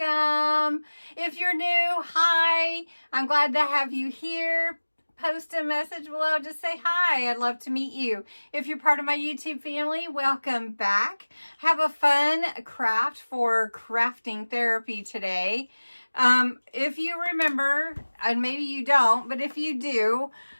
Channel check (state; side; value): inverted; both; correlation -1.00